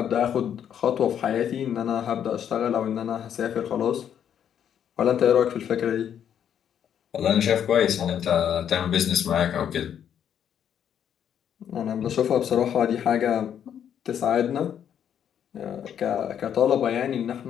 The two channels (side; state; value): right; quieter; 9.1 dB